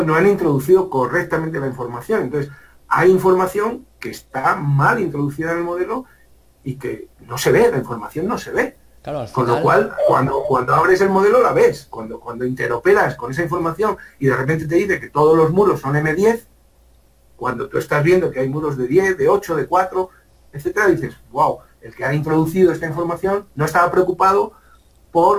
no han introducido correctamente la información. Entonces, hay información que está mal introducida en el modelo y que no se ve, la información no se ve. Claro, al final... Con lo cual, cuando abres el modelo la ves. Cuando interoperas con esa información y de repente te dice que todos los muros son M10, cuando tú estás viendo que hay muros de 10, de 8, de 4, etcétera, dices, wow, el que ha introducido esta información no estaba preocupado por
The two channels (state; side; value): identical; both; correlation 1.00